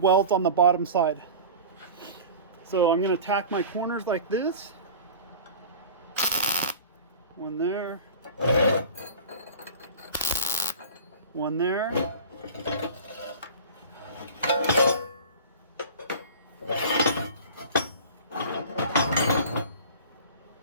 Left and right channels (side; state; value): both; inverted; correlation -0.38